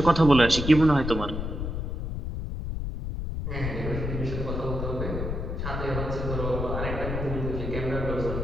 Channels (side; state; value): left; noise; rumble, 4 dB below the sound